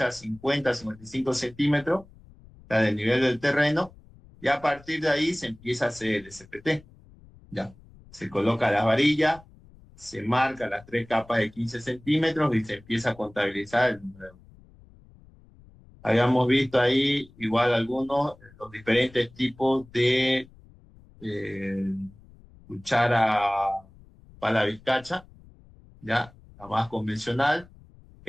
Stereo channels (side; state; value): left; noise; rumble, 24 dB below the sound